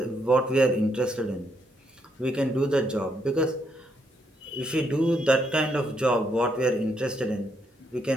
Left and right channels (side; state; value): both; normal; correlation 0.76